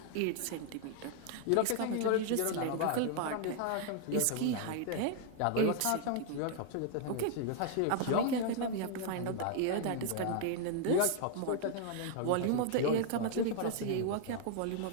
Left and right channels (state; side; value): different; both; correlation 0.00